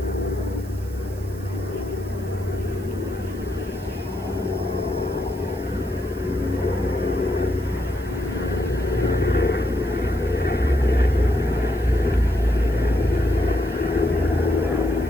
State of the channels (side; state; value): right; noise; hiss, 22 dB below the sound